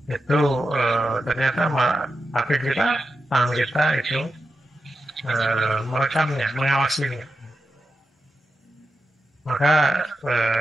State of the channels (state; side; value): normal; both; correlation 0.88